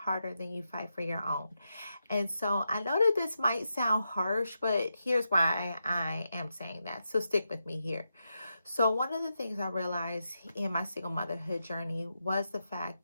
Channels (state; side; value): inverted; both; correlation -0.86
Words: than you fight for your own. And so I know that this might sound harsh, but here's why I am saying that. So stick with me here. So one of the things I realized in my single motherhood journey was the fact